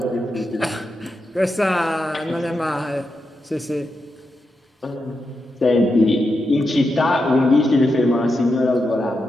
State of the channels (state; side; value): normal; both; correlation 0.86